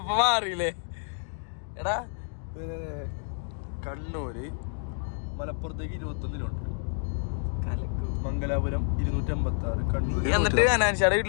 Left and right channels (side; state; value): right; silent; 59 dB below the other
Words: മാറിയില്ലേ? എടാ കണ്ണൂര് മലപ്പുറത്തേക്ക് 21 കിലോമീറ്റർ, കലക്കു. മംഗലാപുരം 256, കണ്ണൂർ. എന്നിട്ട് അനാൻഷാടെ